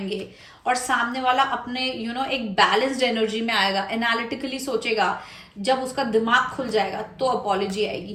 और सामने वाला अपने एक बैलेंस्ड एनर्जी में आएगा, एनालिटिकली सोचेगा, जब उसका दिमाग खुल जाएगा, तो अपॉलॉजी आएगी।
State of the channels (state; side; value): identical; both; correlation 1.00